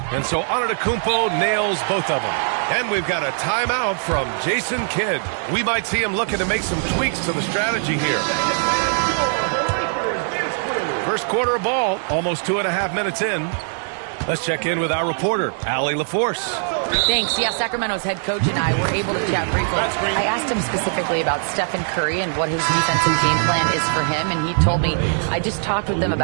And so Antetokounmpo nails both of them. And we've got a timeout from Jason Kidd. We might see him looking to make some tweaks to the strategy here. First quarter of ball, almost 2.5 minutes in. Let's check in with our reporter, Allie LaForce. Thanks. Yeah, Sacramento's head coach and I were able to chat briefly. I asked him specifically about Stephen Curry and what his defensive game plan is for him, and he told me, I just talked with them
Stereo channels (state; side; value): silent; left; 63 dB below the other